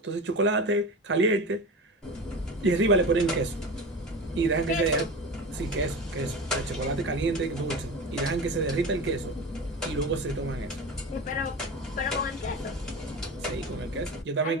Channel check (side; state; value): both; normal; correlation 0.29